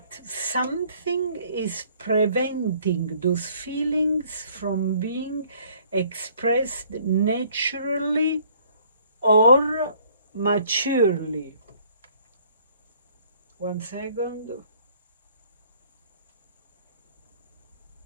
something is preventing those feelings from being expressed naturally or maturely. 1 second.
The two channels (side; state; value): both; inverted; correlation -0.59